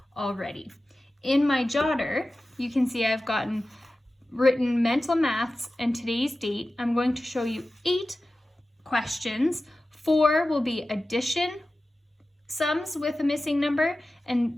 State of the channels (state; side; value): normal; both; correlation 0.95